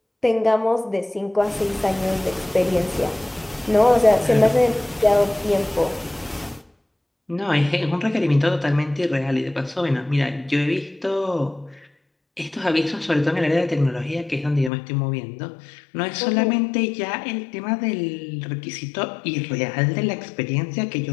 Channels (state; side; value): drops out; right; at 14.7 s